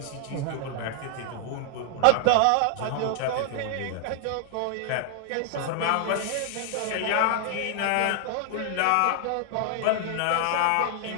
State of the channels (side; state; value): both; different; correlation 0.00